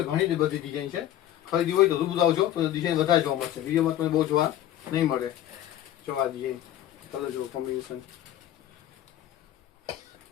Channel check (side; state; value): right; quieter; 12.3 dB